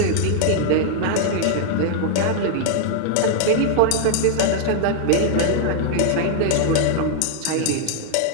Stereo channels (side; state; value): both; different; correlation 0.00